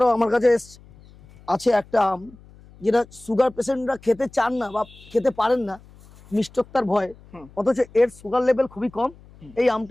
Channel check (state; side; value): noise; left; hum, 24 dB below the sound